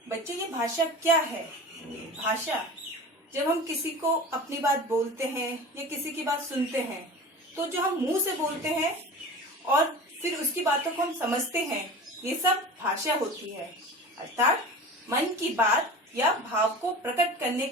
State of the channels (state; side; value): normal; both; correlation 0.35